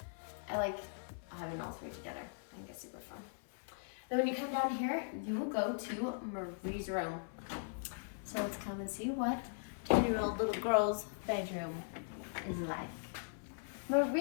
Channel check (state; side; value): silent; right; 51 dB below the other